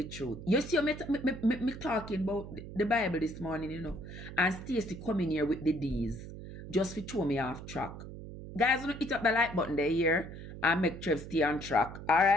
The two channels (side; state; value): right; noise; hum, 11 dB below the sound